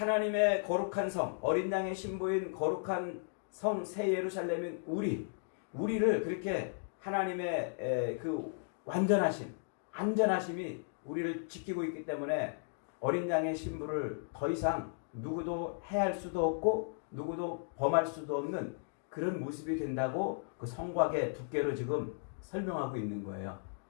거룩한 성, 어린 양의 신부인 거룩한 성 새 예루살렘인 우리를 그렇게 하나님의 그 안전하심이 우리를 지키고 있기 때문에 어린 양의 신부를 더 이상 누구도 해할 수도 없고 누구도 범할 수도 없는 그런 모습이 된다고 그 성곽의 두께로 지금 설명하고 있는 거예요.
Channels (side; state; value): right; silent; digital silence